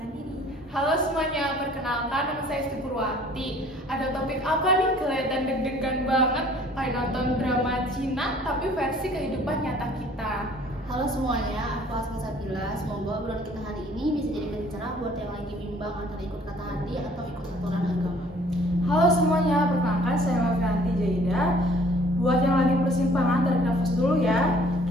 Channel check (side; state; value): both; normal; correlation 0.55